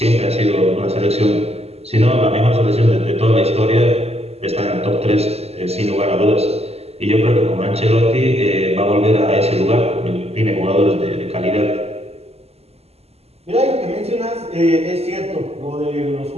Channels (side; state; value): left; late; 0.30 ms